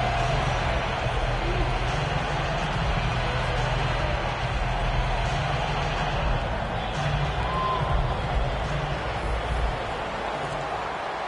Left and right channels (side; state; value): both; identical; correlation 1.00